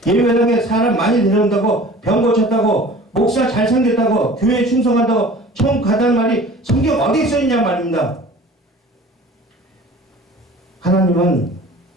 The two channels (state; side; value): normal; both; correlation 0.44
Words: 예배당에 사람 많이 데려온다고 병 고쳤다고 목사 잘생겼다고 교회에 충성한다고 천국 가다는 말이 성경 어디에 써 있냐 말입니다. 하나님은